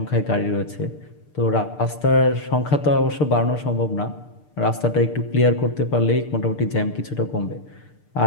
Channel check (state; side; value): late; right; 6.7 ms